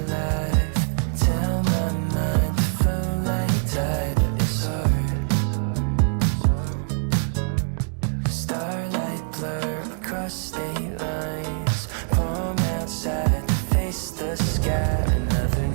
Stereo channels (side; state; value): left; silent; digital silence